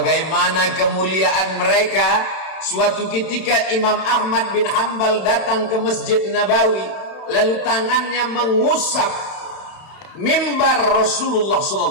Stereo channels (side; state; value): right; late; 31 ms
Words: kemuliaan mereka? Suatu ketika Imam Ahmad bin Hanbal datang ke Masjid Nabawi, lalu tangannya mengusap mimbar Rasulullah